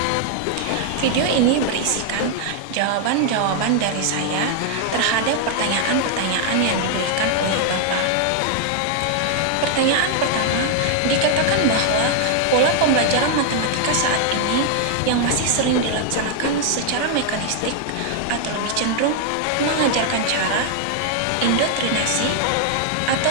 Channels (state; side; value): different; both; correlation 0.00